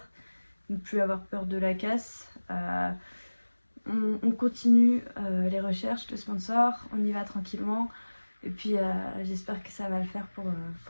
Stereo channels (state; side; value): inverted; both; correlation -1.00